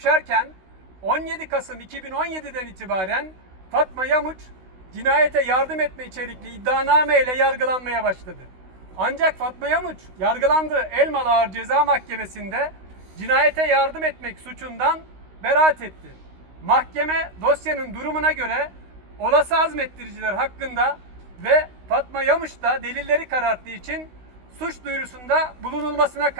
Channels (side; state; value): left; late; 16 ms